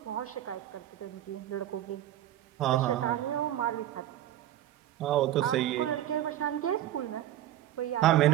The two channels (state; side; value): quieter; left; 12.8 dB